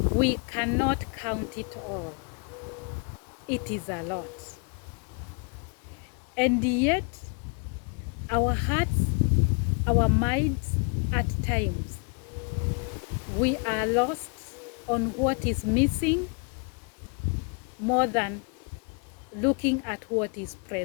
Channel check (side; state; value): right; quieter; 36.0 dB